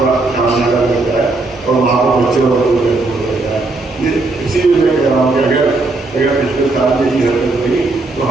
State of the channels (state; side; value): quieter; left; 3.3 dB